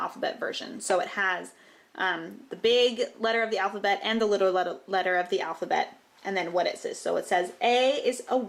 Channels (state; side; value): identical; both; correlation 1.00